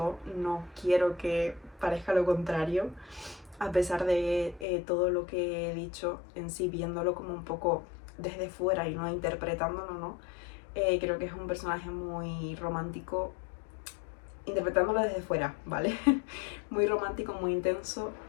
no quiero que parezca lo contrario, a pesar de todo lo que he dicho en sí, viéndolo como un poco desde fuera y no interpretándolo, ¿no? Creo que es un personaje muy romántico, interpretándolo desde fuera, ¿vale? Muy romántico, muy intenso,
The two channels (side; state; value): right; drops out; at 4.7 s